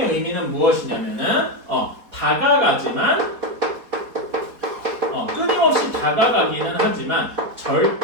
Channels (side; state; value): left; late; 4.2 ms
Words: 의미는 무엇이냐면은 다가가지만 끊임없이 다가가기는 하지만